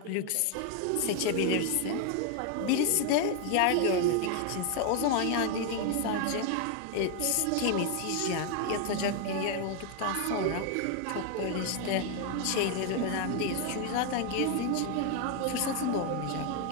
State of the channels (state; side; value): different; both; correlation 0.01